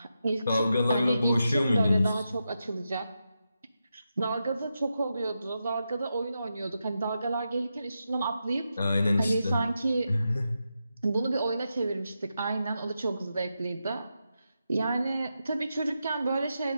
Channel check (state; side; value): inverted; both; correlation -0.88